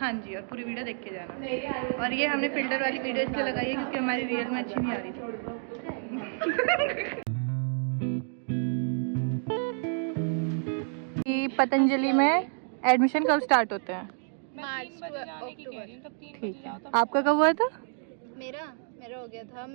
जी, और पूरी वीडियो देख के जाना। और ये हमने फिल्टर वाली वीडियो इसलिए लगाई है क्योंकि हमारी रियल में अच्छी नहीं आ रही थी। पतंजलि में एडमिशन कब स्टार्ट होते हैं? मार्च टू अक्टूबर। ठीक है, आपका कब हुआ था? मेरा हो गया था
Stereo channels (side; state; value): left; silent; 58 dB below the other